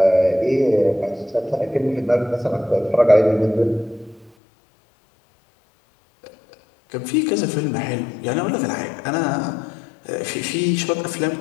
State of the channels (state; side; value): drops out; right; at 4.3 s